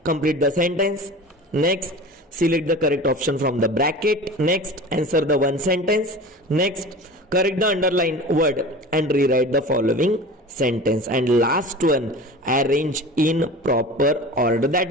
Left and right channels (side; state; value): both; normal; correlation 0.36